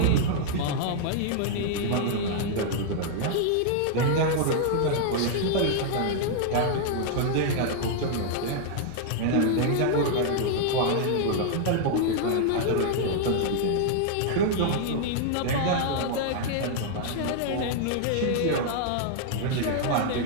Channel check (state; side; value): different; both; correlation -0.01